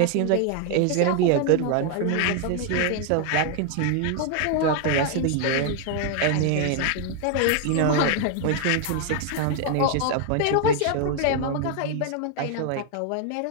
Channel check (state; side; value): different; both; correlation 0.00